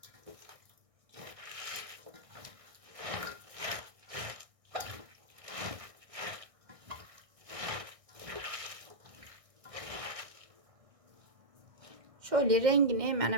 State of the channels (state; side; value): late; left; 1.6 ms